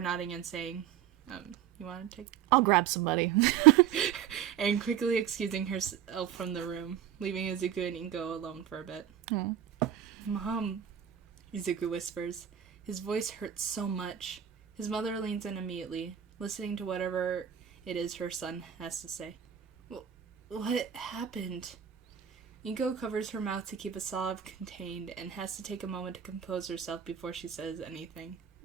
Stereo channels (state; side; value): quieter; left; 9.7 dB